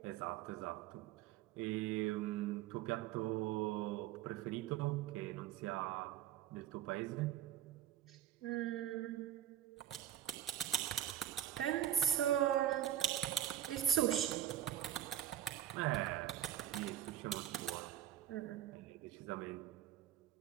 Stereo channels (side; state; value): left; quieter; 11.2 dB